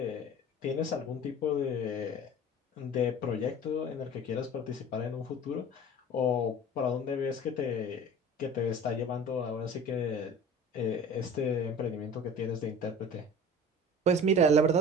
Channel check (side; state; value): both; normal; correlation 0.41